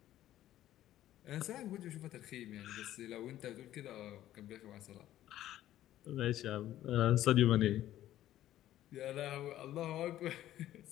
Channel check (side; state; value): right; quieter; 13.3 dB